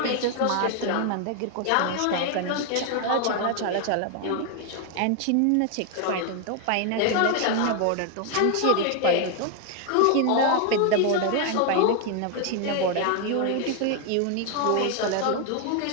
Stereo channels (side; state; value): both; different; correlation 0.00